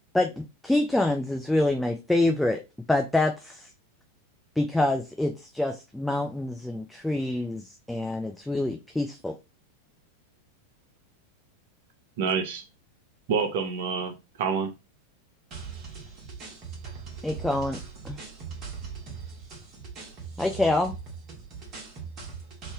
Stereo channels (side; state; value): both; normal; correlation 0.75